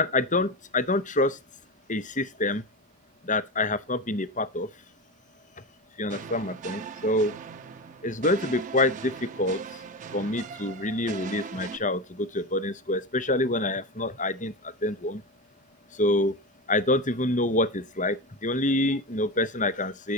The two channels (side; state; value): both; normal; correlation 0.21